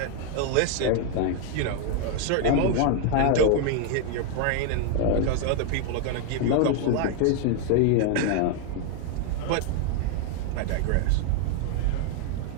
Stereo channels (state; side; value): different; both; correlation 0.00